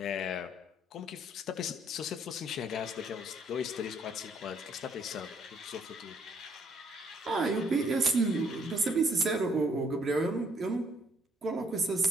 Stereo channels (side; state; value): both; normal; correlation 0.66